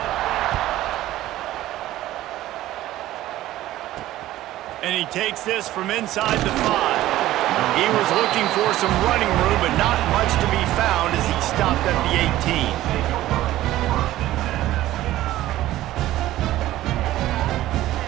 he takes this from inside the 5. He was looking for some running room, but not much to be found as he stopped at the 18.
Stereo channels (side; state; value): left; quieter; 15.0 dB